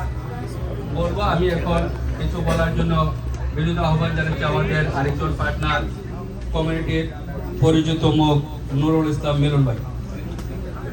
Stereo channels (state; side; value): identical; both; correlation 1.00